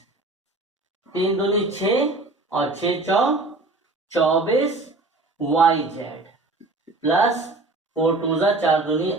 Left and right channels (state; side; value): quieter; left; 3.1 dB